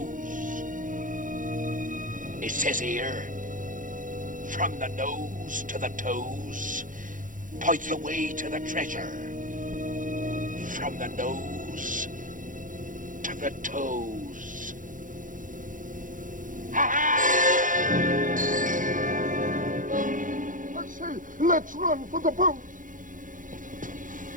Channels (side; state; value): left; late; 0.38 ms